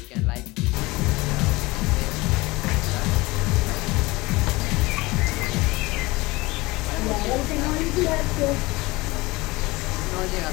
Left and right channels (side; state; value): right; quieter; 22.0 dB